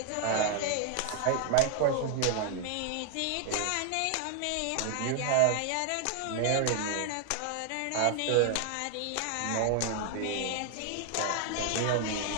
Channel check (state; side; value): different; both; correlation 0.00